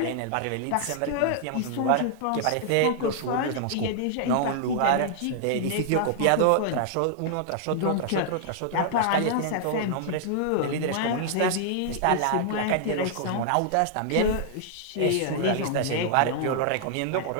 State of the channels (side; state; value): both; different; correlation -0.01